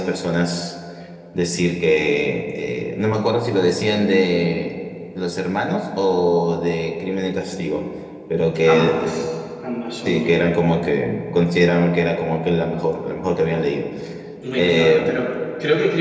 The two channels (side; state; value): both; identical; correlation 1.00